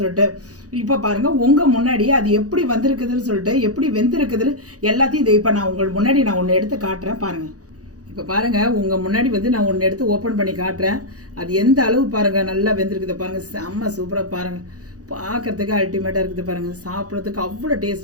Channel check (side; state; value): left; late; 0.67 ms